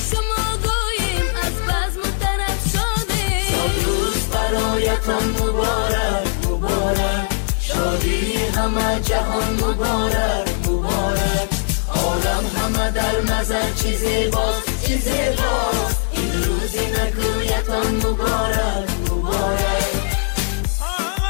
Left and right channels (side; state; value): right; silent; digital silence